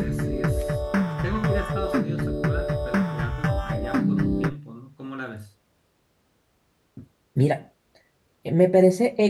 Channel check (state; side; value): identical; both; correlation 1.00